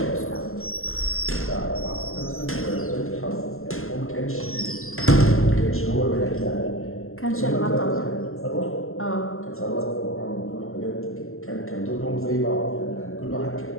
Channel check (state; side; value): late; right; 0.62 ms